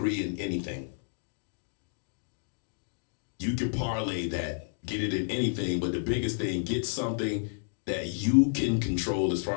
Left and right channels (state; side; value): silent; right; digital silence